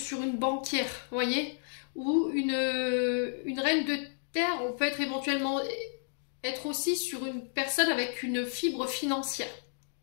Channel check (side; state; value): right; silent; digital silence